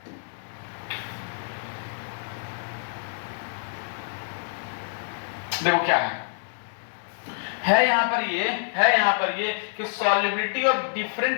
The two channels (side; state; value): right; silent; digital silence